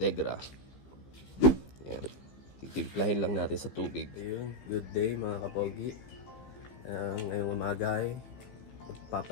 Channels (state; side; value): late; right; 15 ms